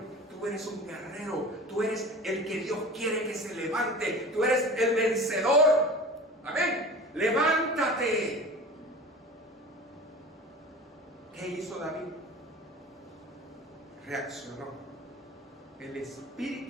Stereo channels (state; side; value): normal; both; correlation 0.37